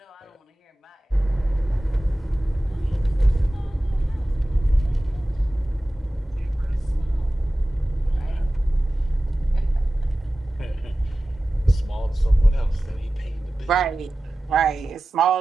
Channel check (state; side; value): normal; both; correlation 0.96